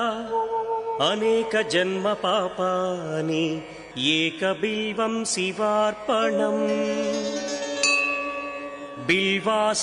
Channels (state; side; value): identical; both; correlation 1.00